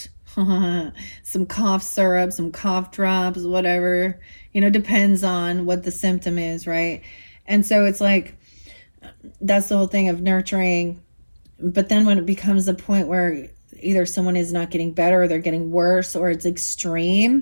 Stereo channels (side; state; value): both; inverted; correlation -1.00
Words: some cough syrup, some cough drops, whatever. Depends on what the symptom is, right? And so it's like, that's the whole thing of nurturing. But then when it becomes a point where either someone is not getting better or they're getting worse or it's